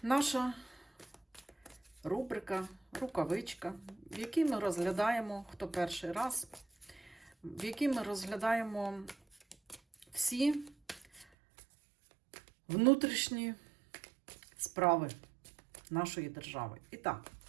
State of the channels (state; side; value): drops out; left; at 11.2 s